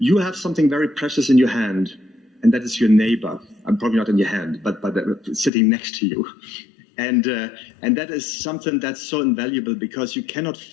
have something very precious in your hand, and that is your neighbor. I'm probably not in your hand, but sitting next to you. And that is something that's so invaluable, because you cannot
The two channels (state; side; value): drops out; right; at 5.5 s